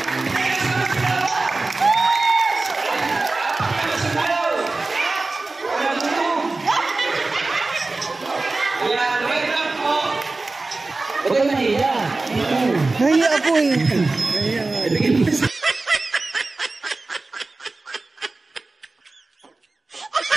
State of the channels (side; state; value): left; quieter; 3.4 dB